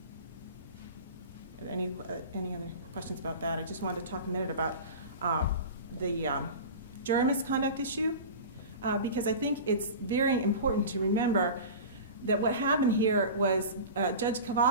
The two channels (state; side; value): inverted; both; correlation -0.33